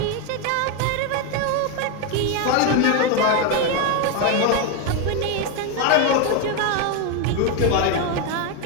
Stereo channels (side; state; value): both; different; correlation 0.02